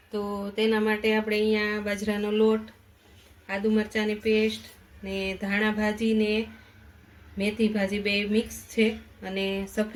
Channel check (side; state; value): both; identical; correlation 1.00